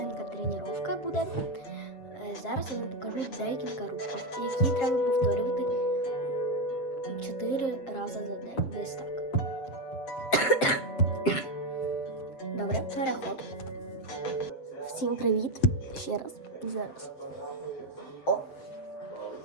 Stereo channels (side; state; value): right; late; 7.5 ms